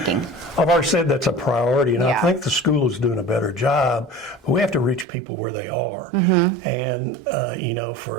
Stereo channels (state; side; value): drops out; left; at 5.1 s